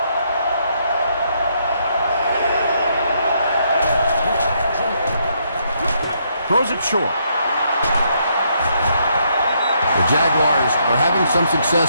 Throws it short. The Jaguars are having some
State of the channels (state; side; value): inverted; both; correlation -0.74